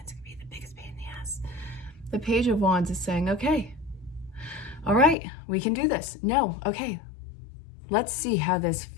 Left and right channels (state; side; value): drops out; right; at 5.2 s